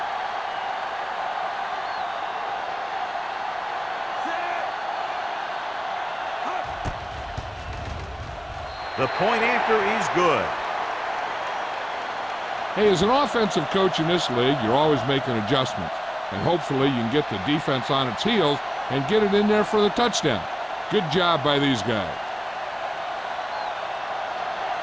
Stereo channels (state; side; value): identical; both; correlation 1.00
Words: The point after is good. Hey, as an offensive coach in this league, you're always making adjustments. And hopefully you can get the defense on its heels and get it in there for the touchdown. Good job by these guys.